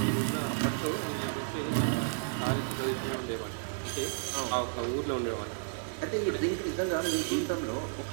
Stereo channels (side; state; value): left; silent; digital silence